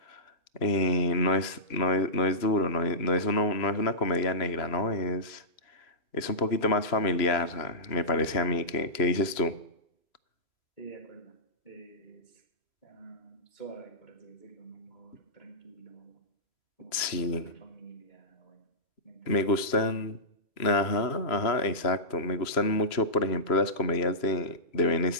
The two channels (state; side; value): late; right; 2.9 ms